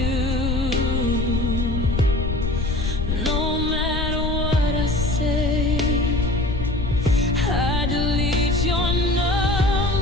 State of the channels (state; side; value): noise; left; rumble, 2 dB below the sound